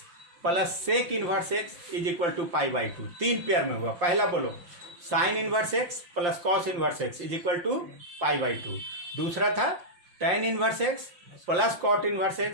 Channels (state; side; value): late; left; 5.7 ms